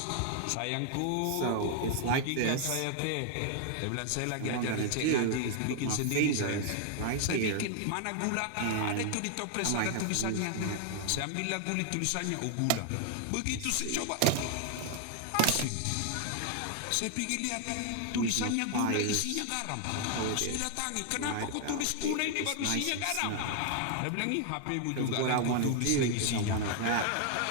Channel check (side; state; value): both; different; correlation 0.00